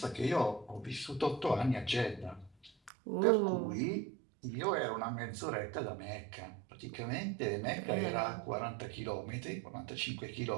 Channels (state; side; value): drops out; left; at 2.9 s